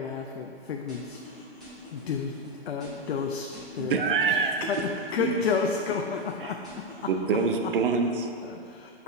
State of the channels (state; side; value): normal; both; correlation 0.08